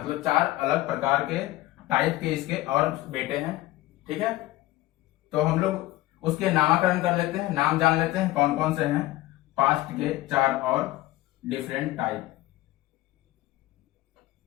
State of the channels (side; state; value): right; quieter; 17.1 dB